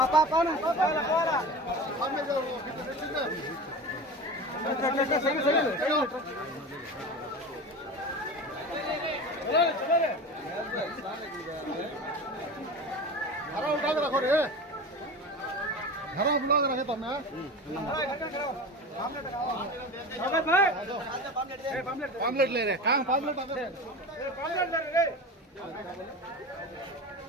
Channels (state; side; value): normal; both; correlation 0.30